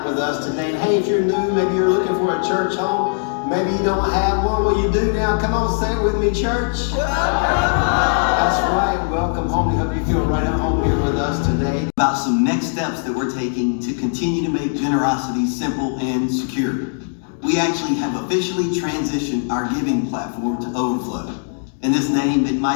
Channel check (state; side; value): silent; right; digital silence